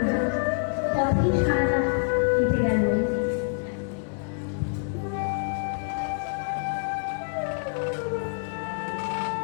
না, পথেই সারা রাত কেটে গেল।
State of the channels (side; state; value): right; silent; digital silence